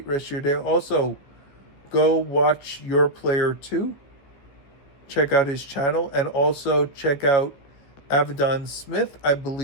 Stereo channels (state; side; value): late; right; 15 ms